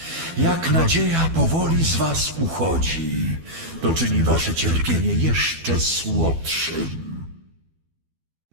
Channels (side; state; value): left; late; 12 ms